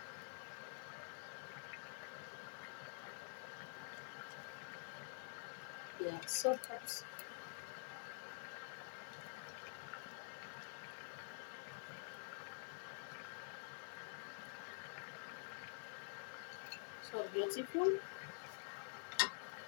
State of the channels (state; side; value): silent; right; digital silence